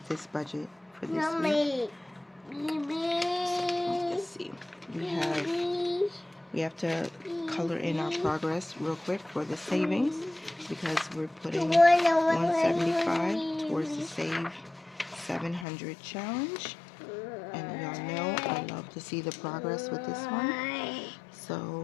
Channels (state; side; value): drops out; right; at 15.7 s